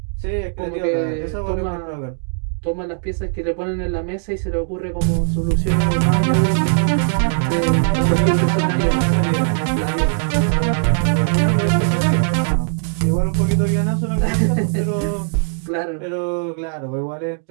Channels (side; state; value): left; silent; digital silence